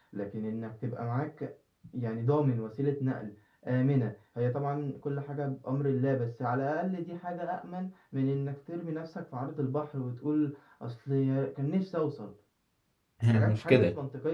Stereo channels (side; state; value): both; identical; correlation 1.00